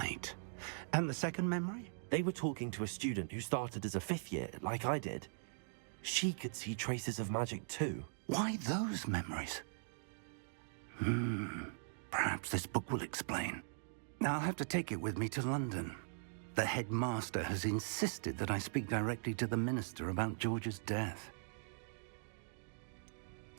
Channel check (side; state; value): left; silent; digital silence